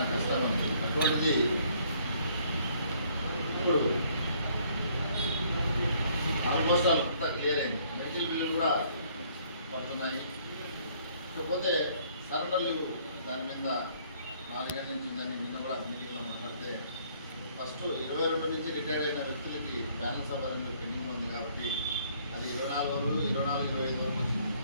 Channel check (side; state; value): both; inverted; correlation -0.63